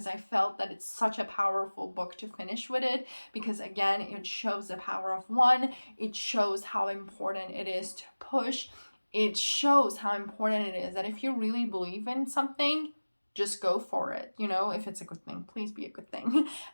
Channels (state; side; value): inverted; both; correlation -1.00